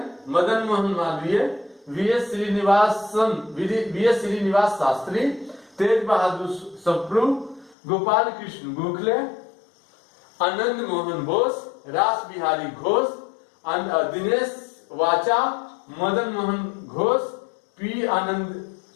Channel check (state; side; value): drops out; right; at 7.8 s